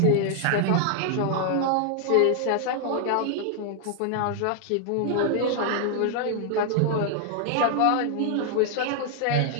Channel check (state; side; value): different; both; correlation 0.00